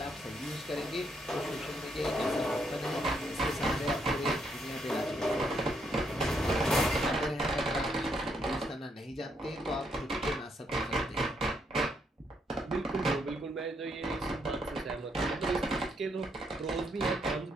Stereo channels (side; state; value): both; normal; correlation 0.75